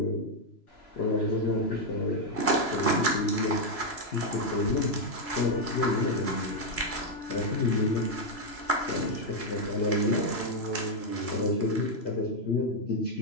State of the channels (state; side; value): late; right; 3.0 ms